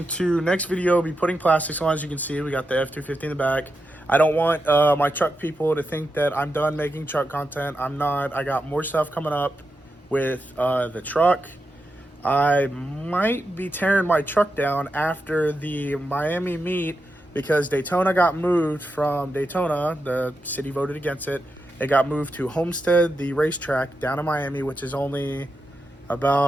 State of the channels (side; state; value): both; normal; correlation 0.87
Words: to, next video, be putting plastics on. As you can see, we got the F250 in the back. I don't want my truck people to think that I'm done making truck content. I'm not. I got more stuff coming up with the truck. I might be tearing my truck down after the Miami meet because Daytona got moved from Daytona. The city voted against it. It got moved to Homestead, the racetrack down in Miami, which is only